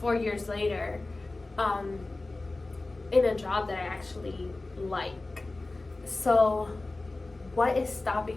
years later, in a job that I actually like. So what is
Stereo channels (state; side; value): quieter; right; 3.1 dB